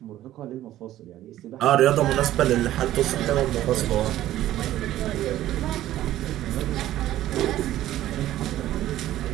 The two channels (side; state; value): left; quieter; 13.8 dB